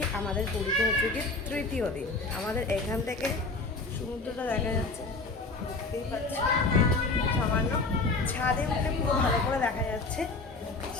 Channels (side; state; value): right; quieter; 3.5 dB